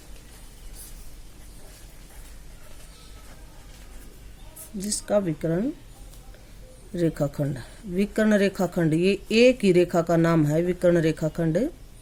रेखाखंड। विकर्ण रेखाखंड, ये एक ही रेखा का नाम है। विकर्ण रेखाखंड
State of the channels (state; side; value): identical; both; correlation 1.00